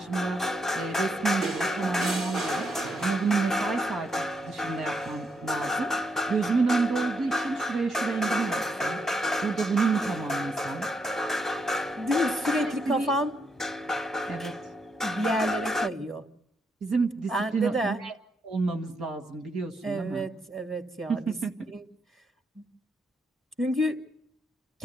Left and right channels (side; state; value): both; normal; correlation 0.78